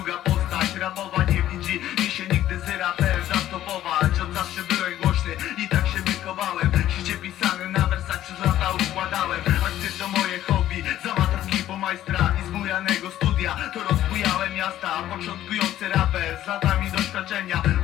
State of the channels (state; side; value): quieter; right; 12.8 dB